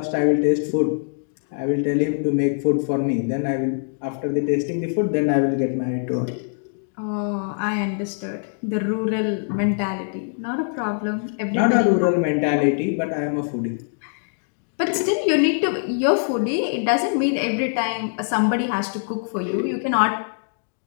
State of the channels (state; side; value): silent; right; digital silence